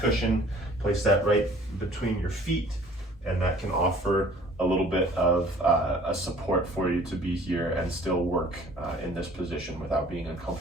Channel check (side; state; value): both; normal; correlation 0.52